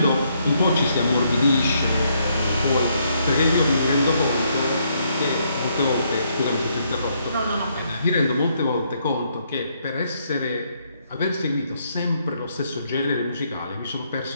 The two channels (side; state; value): both; inverted; correlation -0.73